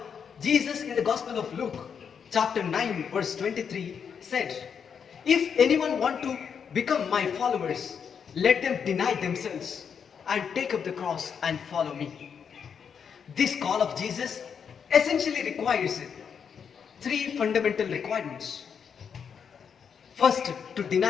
Jesus in the Gospel of Luke chapter 9 verse 23 said, "If anyone want to become my followers, let them deny themselves and take up the cross and follow me." This call of Jesus essentially requires three fundamental requirements. First, to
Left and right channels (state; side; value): quieter; right; 7.0 dB